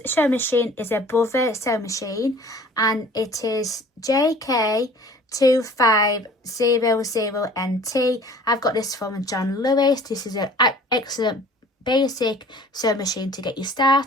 sewing machine is a Brother sewing machine and it is JK2500NT. I've got this from John Lewis. This is an excellent basic sewing machine to get you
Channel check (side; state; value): both; normal; correlation 0.48